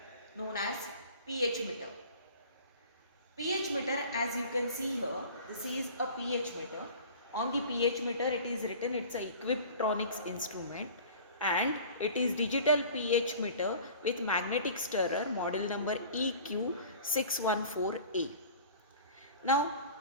known as pH meter. pH meter, as you can see here, this is a pH meter. On the pH meter it is written it's a Equiptronics instrument and it is digital pH meter with magnetic stirrer model number EQ614A. Now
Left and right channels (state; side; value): inverted; both; correlation -0.43